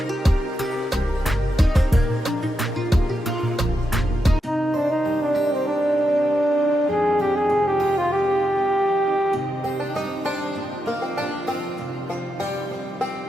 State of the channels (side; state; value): both; normal; correlation 0.85